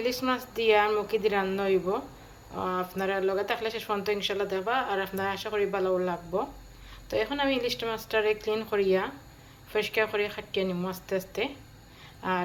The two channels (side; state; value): both; identical; correlation 1.00